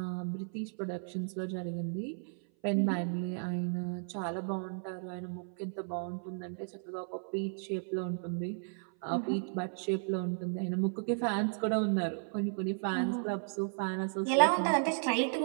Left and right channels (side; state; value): left; silent; 55 dB below the other